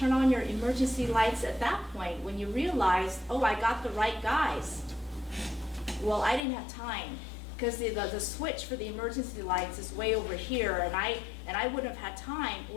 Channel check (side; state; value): right; drops out; at 6.5 s